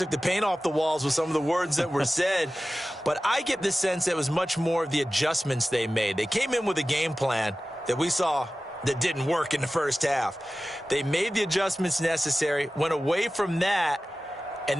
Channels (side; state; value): both; normal; correlation 0.96